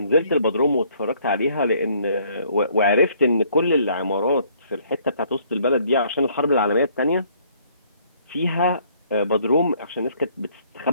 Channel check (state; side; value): inverted; both; correlation -0.62